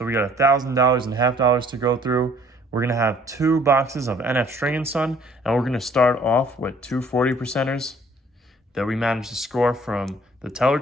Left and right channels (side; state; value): both; normal; correlation 0.57